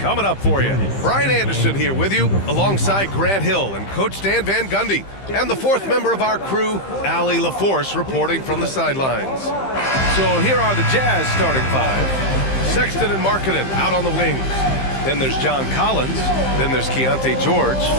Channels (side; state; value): right; late; 15 ms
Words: up for you. Brian Anderson here with you, alongside Grant Hill and Coach Dan Van Gundy. And the fourth member of our crew, Allie LaForce, reporting from the sidelines. So here are the Jazz starting five. Sexton and Markkanen out on the wings. Then there's John Collins. Then there's Keontae George.